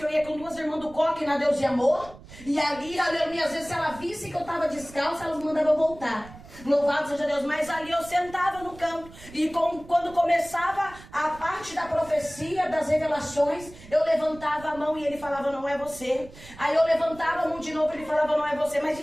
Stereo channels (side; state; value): right; noise; rumble, 19 dB below the sound